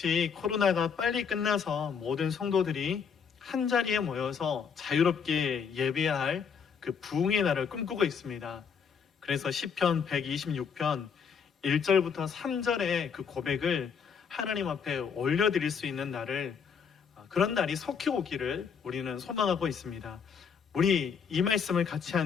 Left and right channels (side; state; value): right; quieter; 6.5 dB